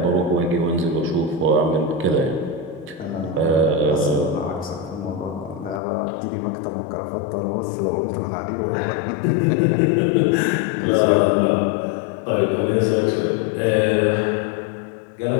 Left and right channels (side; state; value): right; drops out; at 5.8 s